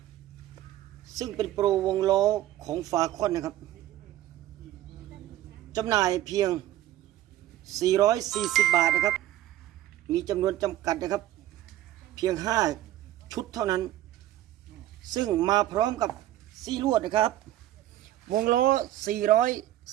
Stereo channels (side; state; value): left; quieter; 13.9 dB